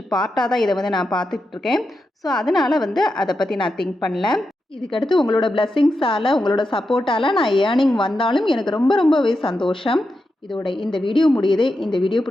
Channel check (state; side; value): normal; both; correlation 0.88